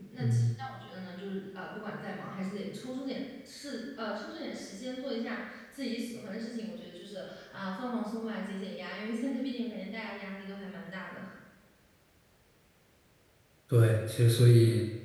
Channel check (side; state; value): both; identical; correlation 1.00